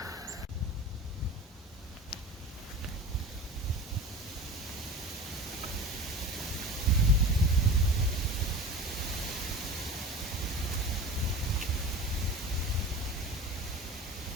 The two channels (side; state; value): both; normal; correlation 0.35